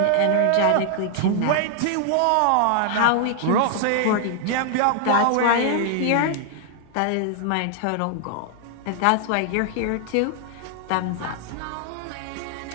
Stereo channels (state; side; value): different; both; correlation 0.00